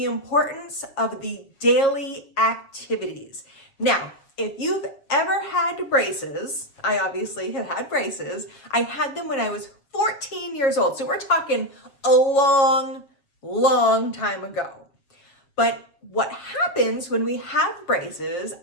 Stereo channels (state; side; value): late; right; 7.0 ms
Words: importance of the daily activities. Now, if you've ever had braces, I obviously have had braces. I had them when I was 14 years old. So we're talking a long time ago. But what happens when we have braces,